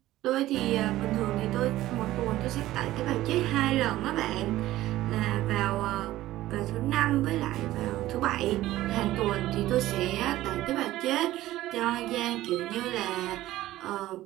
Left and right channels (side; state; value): left; quieter; 15.5 dB